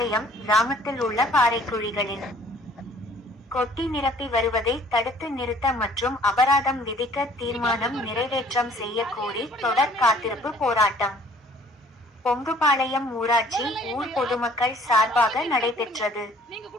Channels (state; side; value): normal; both; correlation 0.55